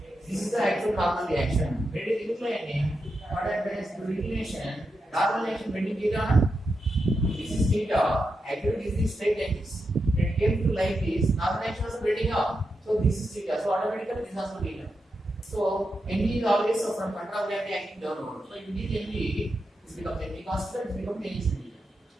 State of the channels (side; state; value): both; normal; correlation 0.87